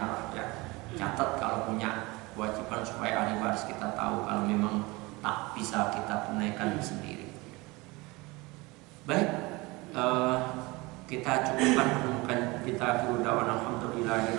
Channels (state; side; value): quieter; left; 23.6 dB